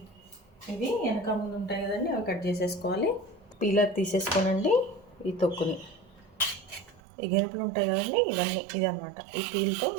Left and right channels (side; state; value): left; drops out; at 7.0 s